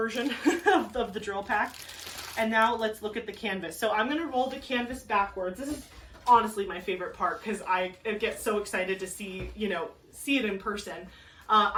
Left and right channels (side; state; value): both; identical; correlation 1.00